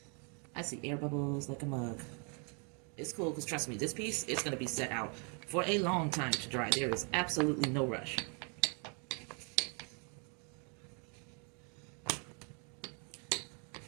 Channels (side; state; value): left; quieter; 37.9 dB